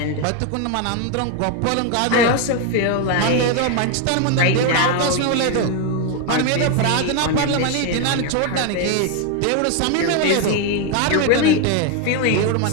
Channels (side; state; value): both; different; correlation 0.01